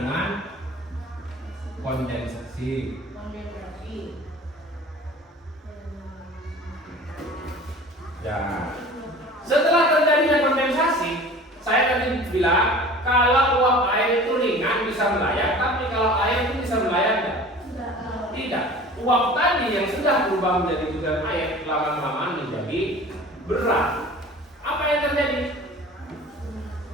kondensasi. Ya, setelah terjadinya kondensasi, saya tadi bilang kalau uap air itu ringan bisa melayang, tapi kalau air itu bisa melayang tidak. Uap tadi yang sudah berubah menjadi butiran air lama-lama menjadi berat. Apa yang terjadi?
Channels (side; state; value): both; normal; correlation 0.42